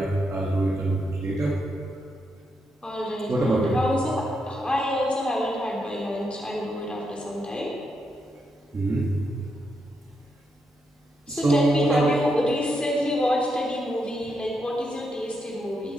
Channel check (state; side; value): normal; both; correlation 0.82